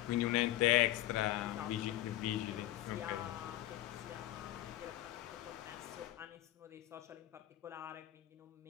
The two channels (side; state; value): right; quieter; 15.0 dB